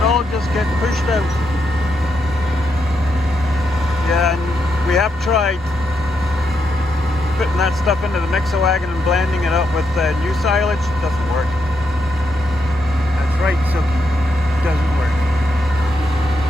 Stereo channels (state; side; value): normal; both; correlation 0.81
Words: all just gets pushed out. Yeah, and we have tried putting that stuff into the mixer wagon and blending it up with new silage. It doesn't work. That's right, Sugi. It doesn't work.